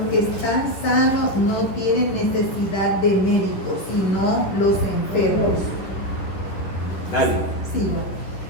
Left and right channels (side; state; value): right; late; 11 ms